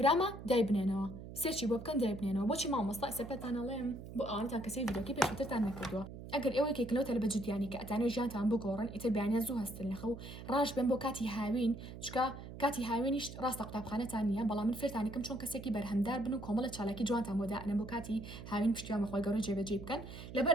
دای بنێنەوە سێرچی بۆ بکەن دای بنێنەوە بۆچی مامۆستا سەپەتانەڵێم بۆ ئەوانتان کەسی ڤیدیۆکی پێشووترتان نەکردووە ئەگەر ئێوەیەکێکنەوە لە بەجدیانی کە ئەتانەوە ژیانتان بگۆڕن ئیتر بەیانیان زوو هەستن لەخە و ڕاش بێن بۆ کاتی هاوین چکە کاتی هاوێنیش ڕاستە قوتابخانەتان نییە بەڵام من فێرتانەکەم چۆن کەسێکی بەرهەمدار بن و کۆمەڵە چالاکی جوانتان بۆ دائنە بۆ کاتی هاوین پشتیوان بەخۆی گەورە جێبەجێ بکەن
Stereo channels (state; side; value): noise; right; hum, 12 dB below the sound